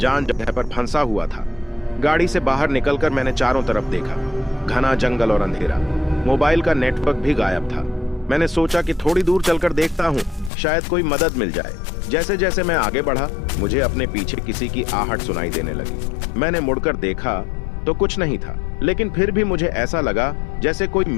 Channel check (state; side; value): drops out; right; at 10.5 s